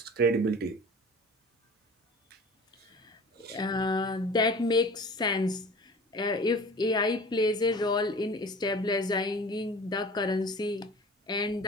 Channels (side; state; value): both; normal; correlation 0.41